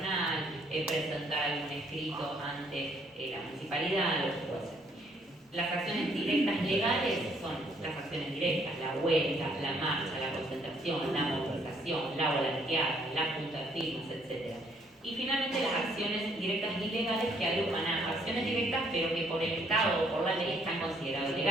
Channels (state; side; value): normal; both; correlation 0.67